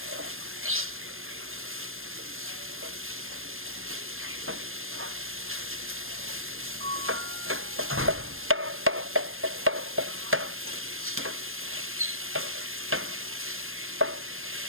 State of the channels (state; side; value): late; left; 0.60 ms